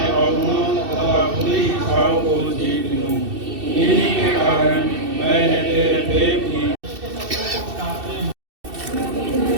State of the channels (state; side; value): late; left; 2.7 ms